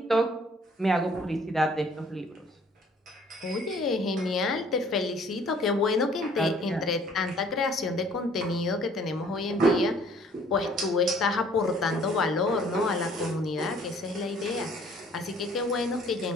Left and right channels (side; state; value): both; normal; correlation 0.57